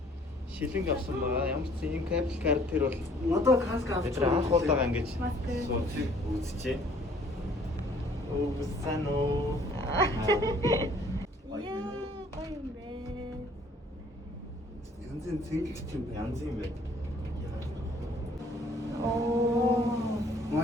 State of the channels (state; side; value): normal; both; correlation 0.58